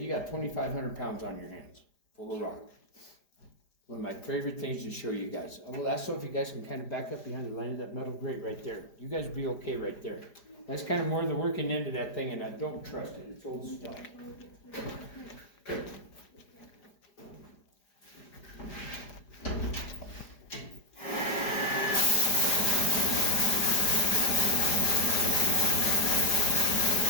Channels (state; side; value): late; right; 4.9 ms